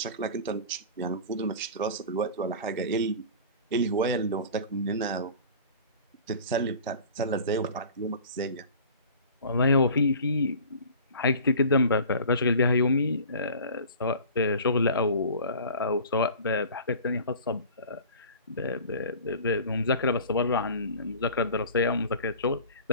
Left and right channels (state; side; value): inverted; both; correlation -0.42